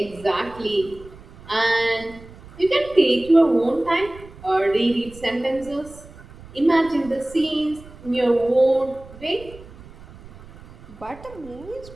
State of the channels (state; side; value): noise; right; rumble, 19 dB below the sound